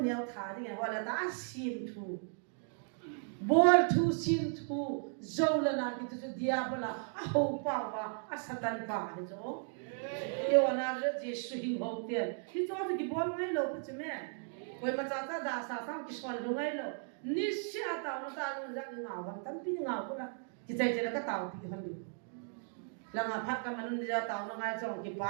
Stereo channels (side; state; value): left; silent; 54 dB below the other